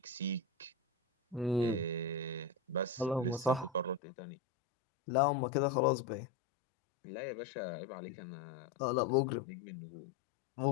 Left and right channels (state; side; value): drops out; right; at 4.0 s